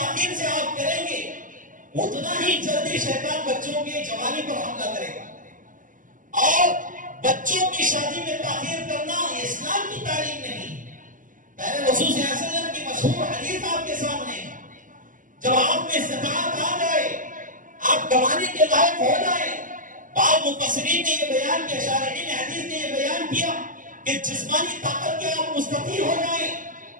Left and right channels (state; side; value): late; left; 0.38 ms